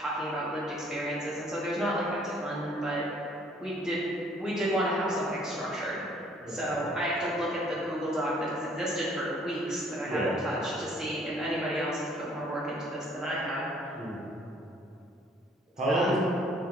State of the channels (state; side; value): normal; both; correlation 0.60